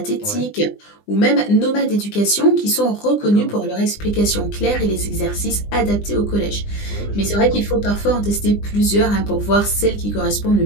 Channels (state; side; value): late; right; 20 ms